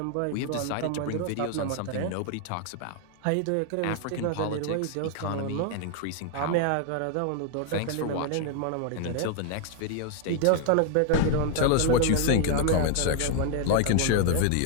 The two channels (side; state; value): both; different; correlation 0.00